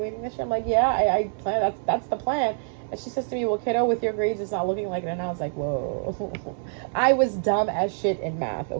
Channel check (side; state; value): left; silent; 58 dB below the other